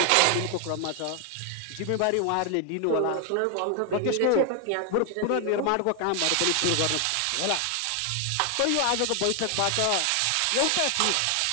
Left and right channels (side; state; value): both; different; correlation 0.00